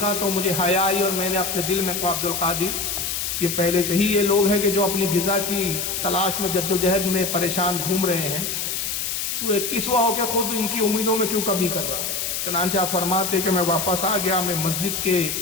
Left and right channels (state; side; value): noise; left; hiss, 2 dB below the sound